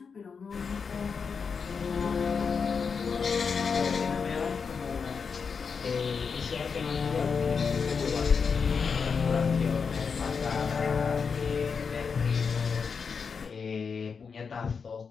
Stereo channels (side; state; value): right; quieter; 5.7 dB